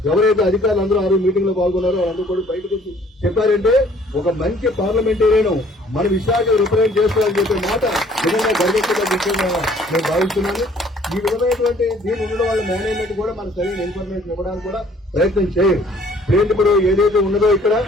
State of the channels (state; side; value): normal; both; correlation 0.57